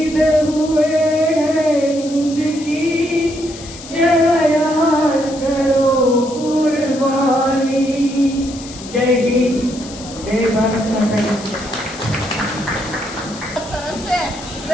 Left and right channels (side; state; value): left; noise; hiss, 15 dB below the sound